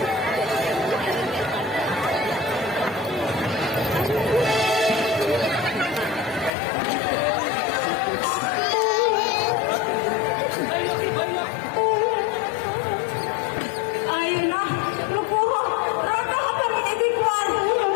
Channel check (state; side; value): drops out; right; at 6.5 s